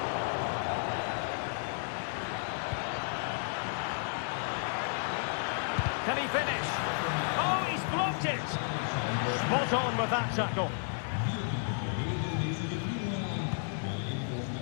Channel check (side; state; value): right; silent; 56 dB below the other